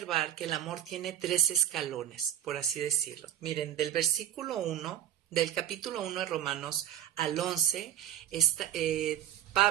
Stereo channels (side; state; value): left; quieter; 11.6 dB